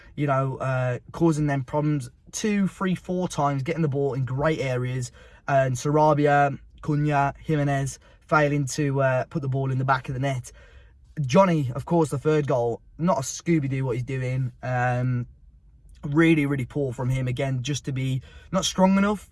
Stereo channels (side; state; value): both; identical; correlation 1.00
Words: you know, causing them problems 2, 3, 4 times, getting the ball in great areas. And Sarabia, Cunha, Jimenez failing to put the ball in the back of the net. Johnny, of course, the third goal, not a Scooby-Doo what he's doing. Really, really poor from him again, just to be not strong enough.